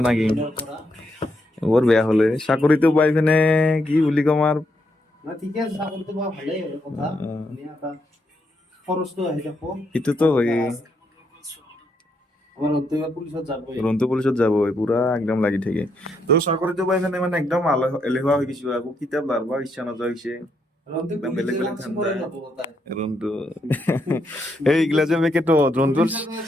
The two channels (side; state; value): both; normal; correlation 0.78